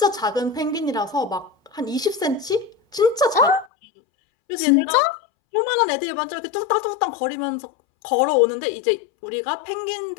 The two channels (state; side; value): drops out; right; at 3.7 s